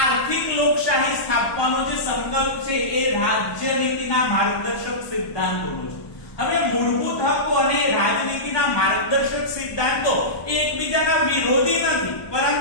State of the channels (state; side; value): late; right; 1.2 ms